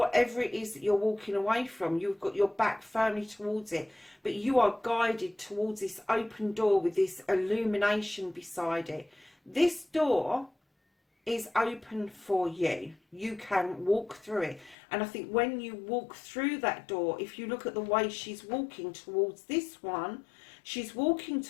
it is that you're walking away from. You've got your back firmly towards it, but you are guided towards this open door with this illumination beside it. This door is open for you. You can walk through it. And I think when you walk through that door, if you look at the way she's walking towards this one, she's walking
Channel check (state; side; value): drops out; right; at 14.8 s